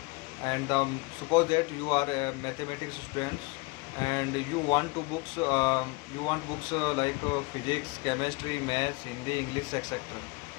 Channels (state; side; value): quieter; right; 25.7 dB